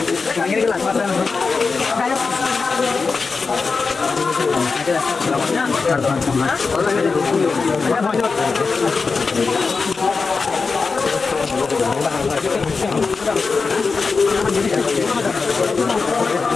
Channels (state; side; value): quieter; right; 4.6 dB